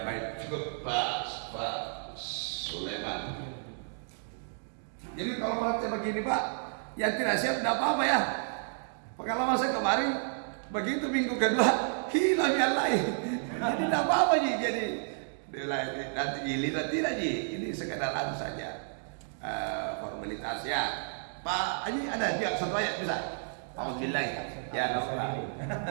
baik, cukup Pak Sulaiman. Jadi kalau praktek begini Pak, yang tidak siap tidak apa-apa ya. Pengalaman saya kemarin begitu minggu kedua hilang yang lain. Jadi tidak apa-apa Ji. Jadi nanti giliran tidak Ji. Ini sekedar anu saja formalitas ya. Pak Haji ada juga satu ayat bisa. Alhamdulillah. Ya apa?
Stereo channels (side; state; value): left; silent; digital silence